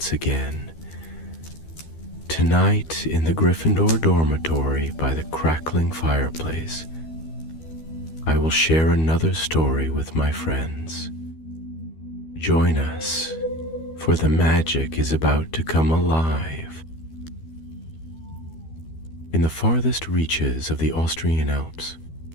again. Tonight, in the Gryffindor dormitory by the crackling fireplace, I will share another story with my friends. Join us, for the magic is about to come alive. In the farthest reaches of the Austrian Alps,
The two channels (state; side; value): late; right; 12 ms